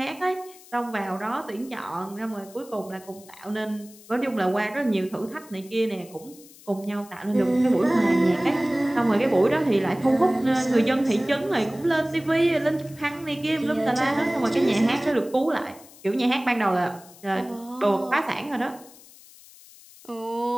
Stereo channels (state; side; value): noise; left; hiss, 22 dB below the sound